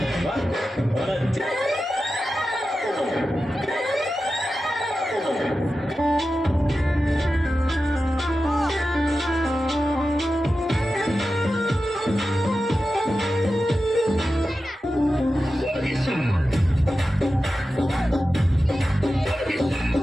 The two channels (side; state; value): both; normal; correlation 0.92